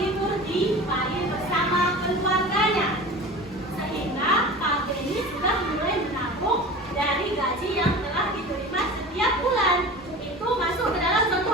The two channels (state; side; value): normal; both; correlation 0.36